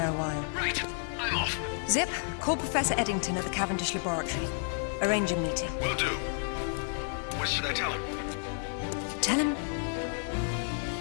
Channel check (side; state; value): right; silent; 57 dB below the other